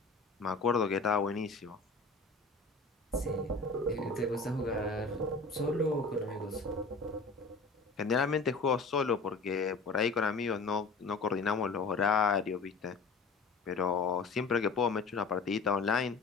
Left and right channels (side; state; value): right; quieter; 4.0 dB